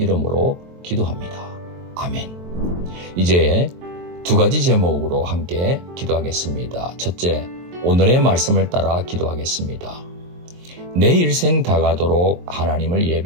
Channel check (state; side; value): late; left; 23 ms